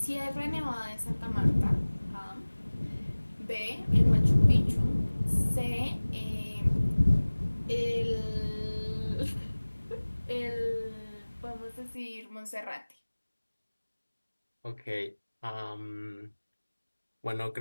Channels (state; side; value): inverted; both; correlation -1.00